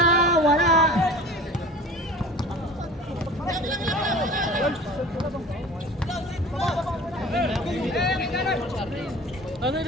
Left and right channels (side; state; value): both; normal; correlation 0.41